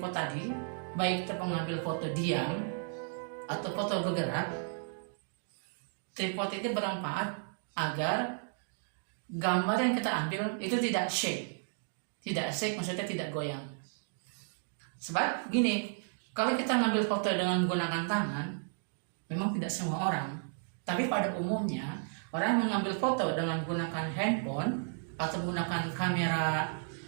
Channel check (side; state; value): left; silent; digital silence